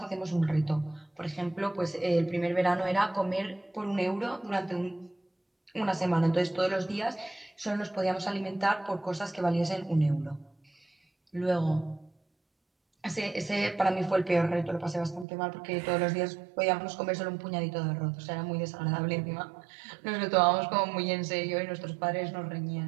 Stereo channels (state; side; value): drops out; left; at 15.2 s